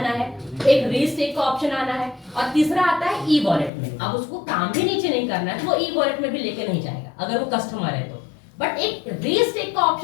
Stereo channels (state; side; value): drops out; right; at 3.7 s